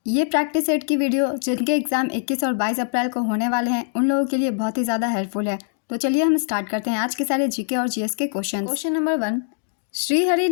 ये प्रैक्टिस सेट की वीडियो जिनके एग्जाम 21 और 22 अप्रैल को होने वाले हैं उन लोगों के लिए बहुत ही ज़्यादा हेल्पफुल है। तो चलिए हम स्टार्ट करते हैं आज के सारे जीके और जीएस के question. Question number 1, Srihari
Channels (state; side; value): silent; right; 64 dB below the other